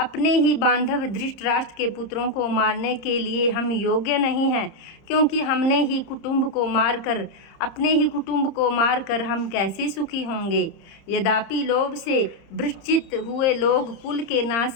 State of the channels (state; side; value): late; right; 30 ms